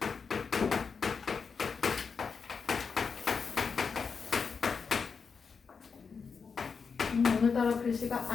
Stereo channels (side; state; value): right; quieter; 5.6 dB